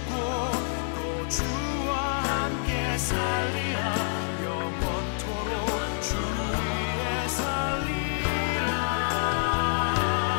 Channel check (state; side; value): silent; right; digital silence